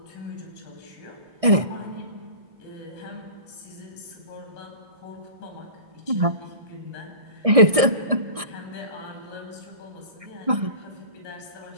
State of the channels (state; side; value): late; left; 1.6 ms